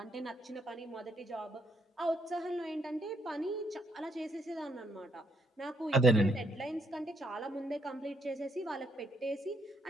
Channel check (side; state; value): both; normal; correlation 0.74